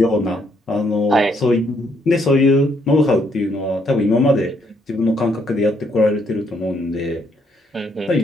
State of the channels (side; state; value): both; normal; correlation 0.71